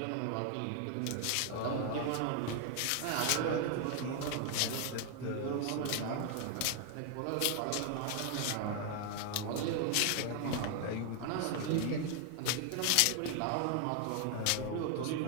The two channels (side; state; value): both; different; correlation 0.00